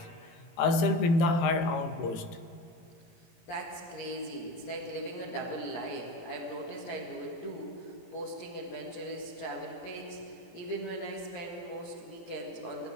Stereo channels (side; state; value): right; late; 17 ms